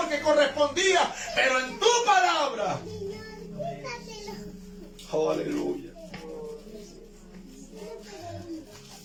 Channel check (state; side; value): identical; both; correlation 1.00